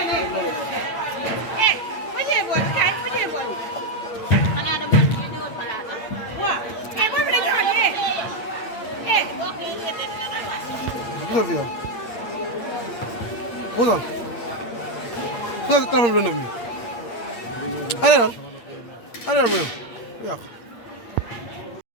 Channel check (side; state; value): right; late; 8.5 ms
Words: Gisal fi yow. Puusal. Puusal si téléphone bi lëndëm bi. Allez allez mu yow yàq.